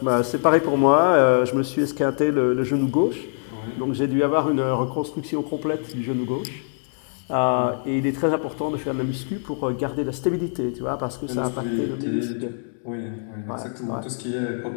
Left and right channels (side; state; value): right; silent; digital silence